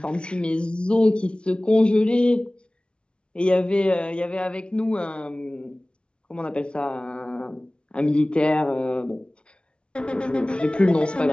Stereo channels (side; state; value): right; late; 0.057 ms